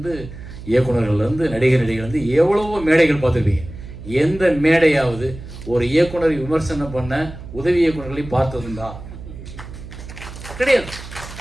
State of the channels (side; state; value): right; noise; hum, 13 dB below the sound